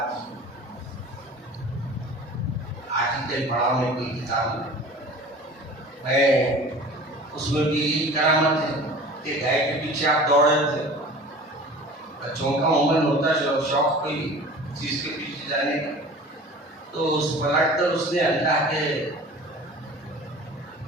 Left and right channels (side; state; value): both; normal; correlation 0.41